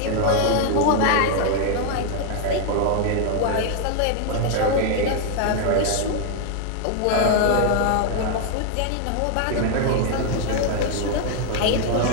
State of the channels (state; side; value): different; both; correlation 0.00